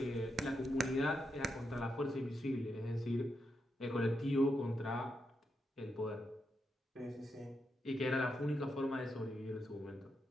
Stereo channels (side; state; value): both; normal; correlation 0.84